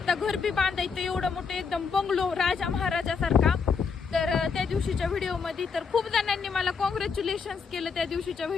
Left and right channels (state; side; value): quieter; right; 5.5 dB